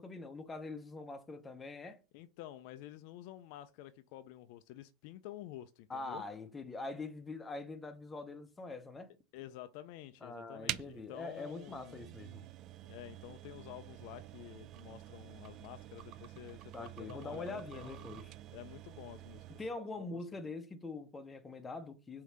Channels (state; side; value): normal; both; correlation 0.49